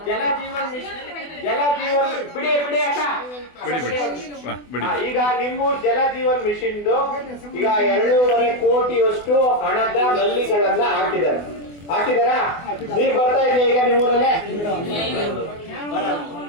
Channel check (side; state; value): right; late; 24 ms